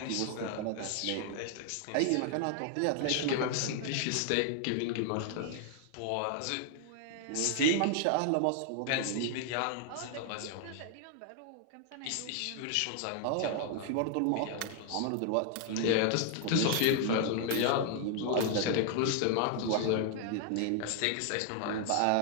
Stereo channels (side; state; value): both; different; correlation 0.00